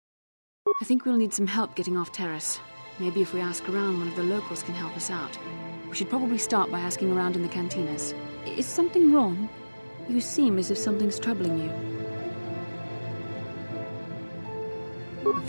I think we'll need some help getting off Terrace. Maybe if we ask around, one of the locals can help us out. We should probably start by asking around in the cantinas. Is something wrong? You seem as if something's troubling you.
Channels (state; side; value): inverted; both; correlation -1.00